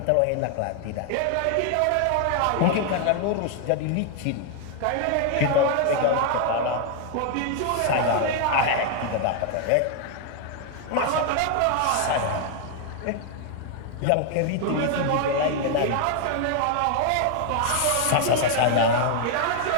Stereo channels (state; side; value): different; both; correlation 0.00